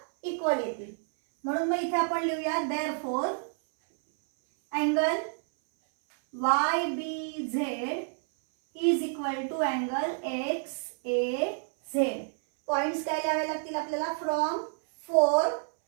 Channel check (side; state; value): left; silent; 59 dB below the other